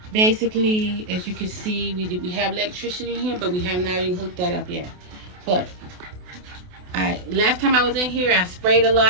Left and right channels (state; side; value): late; left; 28 ms